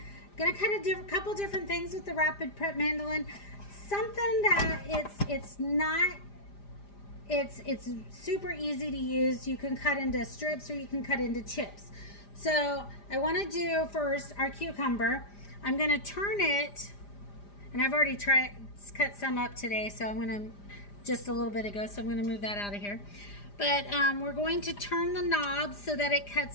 Gonna cut a couple different things with the Rapid Prep Mandoline. Something that it's super easy to use. You can cut into strips or you can cut into chips. So I want to do first our cucumber. I'm going to turn it, and I've already cut some up today, so I'm going to just a little bit ago, so I'm going to move that out of here. But we're going to turn the knob so that it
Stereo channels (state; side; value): late; right; 5.0 ms